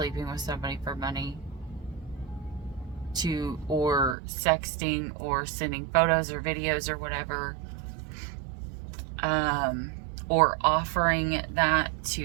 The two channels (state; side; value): drops out; left; at 4.2 s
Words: with somebody for money, or sexting or sending photos or videos or whatever, or offering that